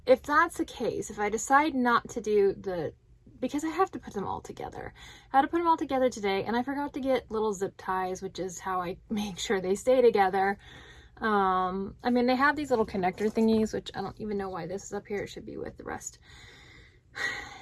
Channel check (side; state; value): both; identical; correlation 1.00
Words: that's the case, if I decide not to do because I have to put them all together. I had to put them all together today, and I forgot to get little zip ties, which is how I make sure they stay together. I mean, they have these little connector thingies, which I don't even know why this is up here. It should be with the rest.